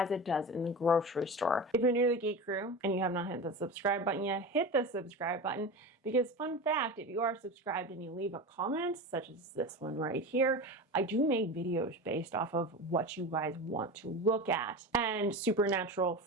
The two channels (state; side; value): normal; both; correlation 0.27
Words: it does in the grocery store. If you're new to the Geek Crew and you have not hit the subscribe button yet, hit the subscribe button, because fun fact, if you are subscribed and you leave a comment, such as this one right here, I do make videos based off of what you guys want to look at. And Supernatural